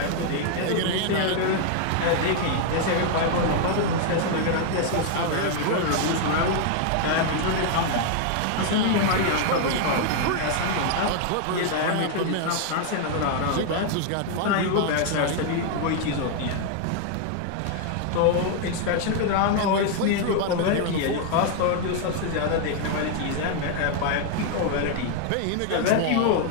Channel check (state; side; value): different; both; correlation 0.00